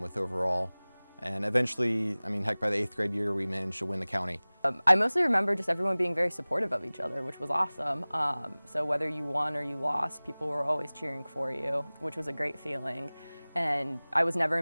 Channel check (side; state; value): both; inverted; correlation -1.00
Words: overall. And eventually, heck, by the 8th grade year, we managed to win the county. I mostly remember just everyone being very supportive of each other, which was awesome. So whether you won or you lost, people were always cheering for you, which was a great feeling. And I was never